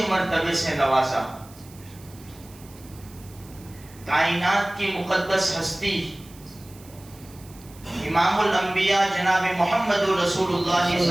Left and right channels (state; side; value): noise; right; hiss, 23 dB below the sound